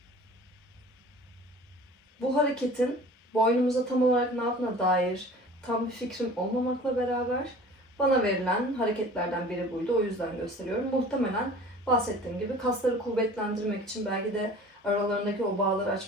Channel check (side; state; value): both; normal; correlation 0.44